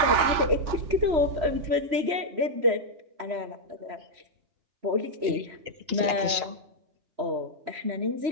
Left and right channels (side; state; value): left; late; 3.1 ms